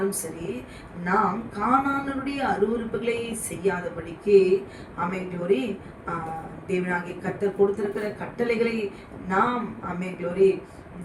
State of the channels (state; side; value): identical; both; correlation 1.00